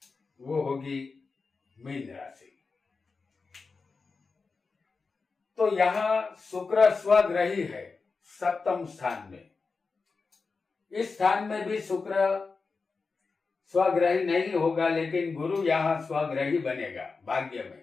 वो होगी मीन राशि। तो यहाँ शुक्र स्वग्रही है सप्तम स्थान में। इस स्थान में भी शुक्र स्वग्रही नहीं होगा, लेकिन गुरु यहाँ स्वग्रही बनेगा भाग्य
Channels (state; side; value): quieter; right; 4.4 dB